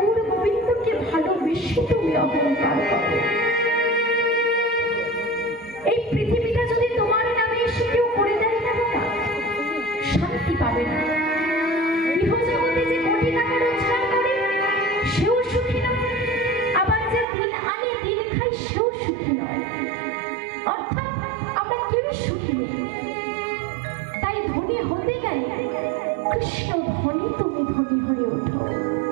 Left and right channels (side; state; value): left; drops out; at 17.2 s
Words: গোবিন্দকে ভালোবেসে তুমি অহংকার করো। এই পৃথিবীটা যদি তোমার নামে সুখী নেই। তাই ধনী হতে গেলে কৃষ্ণ ধনী তুমি ধনী হয়ে ওঠো,